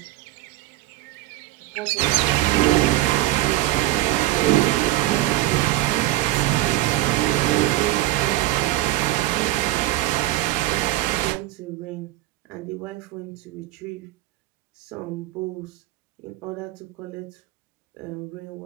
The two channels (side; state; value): left; quieter; 16.5 dB